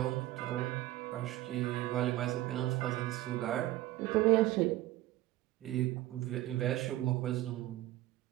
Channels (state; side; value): quieter; left; 15.9 dB